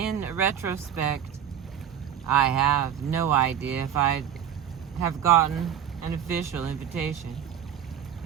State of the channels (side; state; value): left; quieter; 9.4 dB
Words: retrospect, I have no idea if I'd have gotten an official invitation,